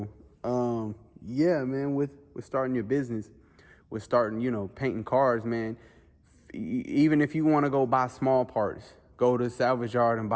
yeah, man, with starting your business, with starting, painting cars, man, even if you want to go buy small parts, go to salvage yard and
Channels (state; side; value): identical; both; correlation 1.00